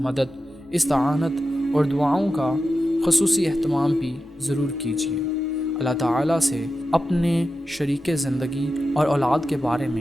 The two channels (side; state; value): both; normal; correlation 0.91